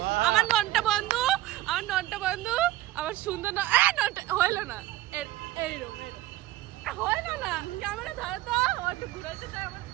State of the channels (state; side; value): quieter; left; 15.8 dB